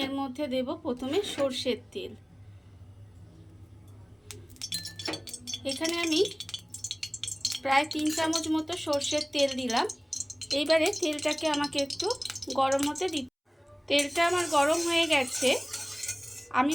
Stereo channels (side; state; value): both; identical; correlation 1.00